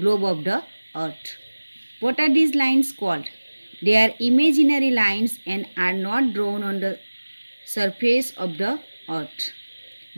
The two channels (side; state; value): both; inverted; correlation -1.00